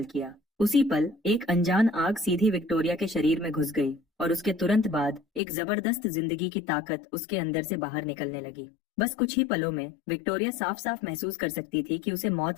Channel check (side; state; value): right; drops out; at 5.4 s